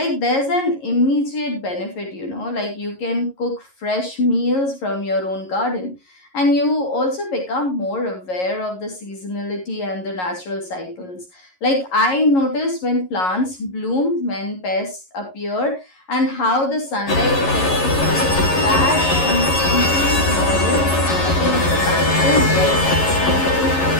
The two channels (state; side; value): late; right; 11 ms